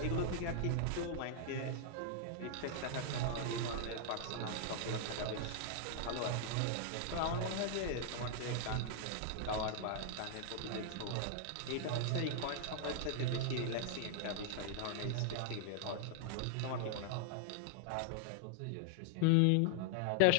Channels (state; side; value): different; both; correlation -0.01